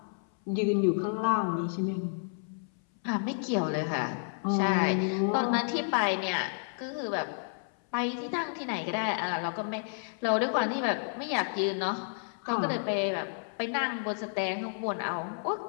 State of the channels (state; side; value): silent; right; 57 dB below the other